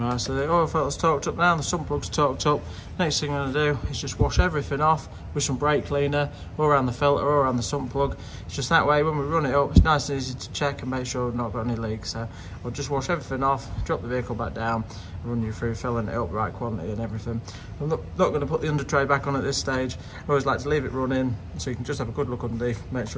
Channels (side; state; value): both; identical; correlation 1.00